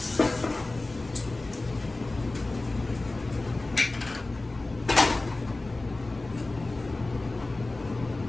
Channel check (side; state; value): right; quieter; 3.0 dB